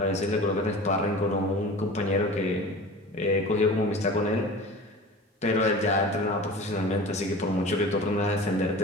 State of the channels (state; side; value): normal; both; correlation 0.37